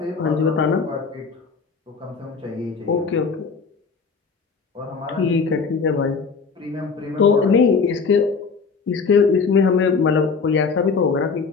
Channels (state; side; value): quieter; right; 5.1 dB